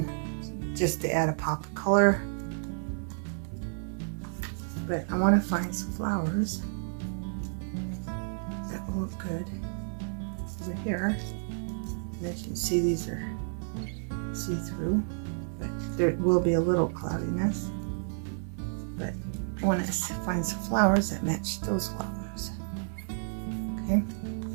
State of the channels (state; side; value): silent; left; digital silence